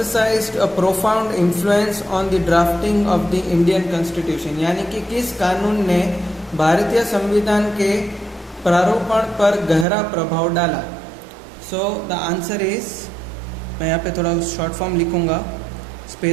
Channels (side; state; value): left; drops out; at 9.9 s